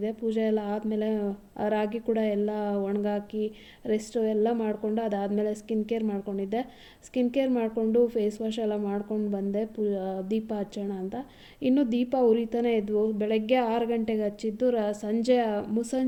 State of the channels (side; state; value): both; identical; correlation 1.00